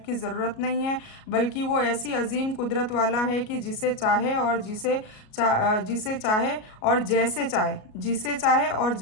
की ज़रूरत नहीं है, बल्कि वो ऐसी अजीम कुदरत वाला है कि जिसे चाहे और जिसे चाहे और जैसे चाहे जिसे चाहे और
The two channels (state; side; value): late; right; 37 ms